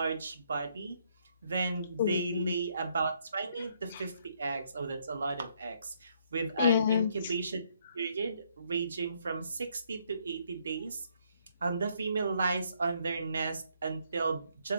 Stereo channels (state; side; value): inverted; both; correlation -0.70